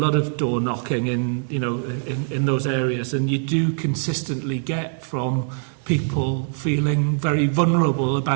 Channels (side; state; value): left; silent; digital silence